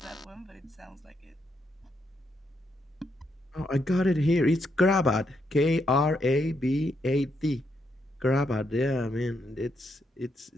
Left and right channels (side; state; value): both; normal; correlation 0.79